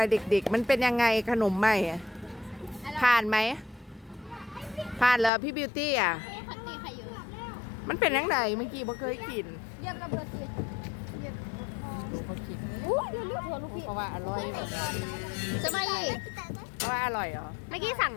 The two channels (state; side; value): drops out; right; at 5.3 s